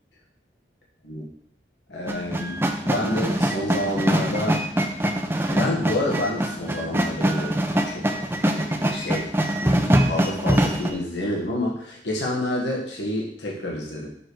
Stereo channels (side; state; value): both; normal; correlation 0.70